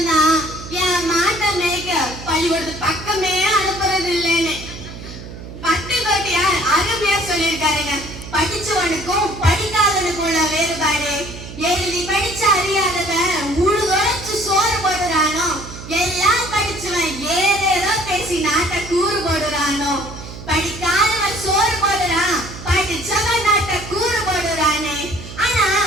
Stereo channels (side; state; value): right; noise; hum, 13 dB below the sound